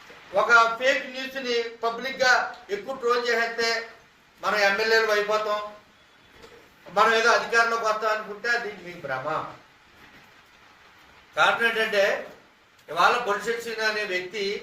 ఒక ఫేక్ న్యూస్ని పబ్లిక్గా ఎక్కువ ట్రోల్ చేసేస్తే మనం ఎమ్మెల్యేలు అయిపోతాం, మనం ఏదో అధికారంలోకి వస్తాం అనుకుంటే అది మీ భ్రమ. కారణం ఏంటంటే ఇవాళ బొలిశెట్టి శ్రీను అనే వ్యక్తి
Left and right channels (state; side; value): identical; both; correlation 1.00